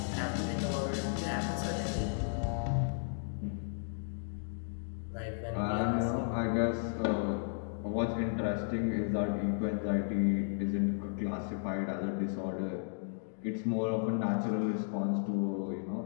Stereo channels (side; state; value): right; silent; digital silence